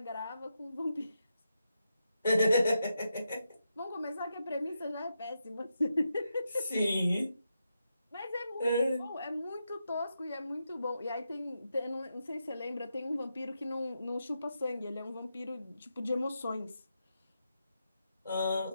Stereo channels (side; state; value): both; inverted; correlation -0.85